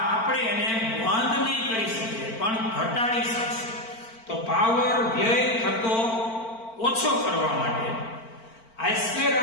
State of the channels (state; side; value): late; right; 4.4 ms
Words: આપણે એને બંધ નહીં કરી શકીએ પણ ઘટાડી શકીએ તો પાવર વ્યય થતો ઓછો કરવા માટે